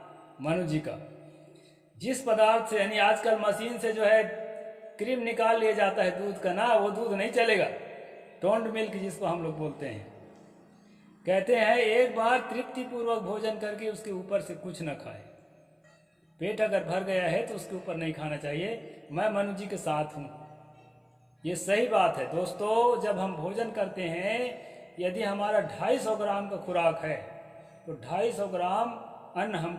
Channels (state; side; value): identical; both; correlation 1.00